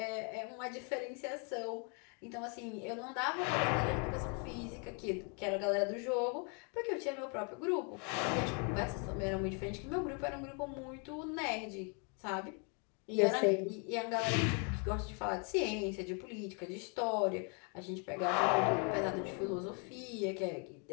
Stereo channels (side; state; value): right; quieter; 37.2 dB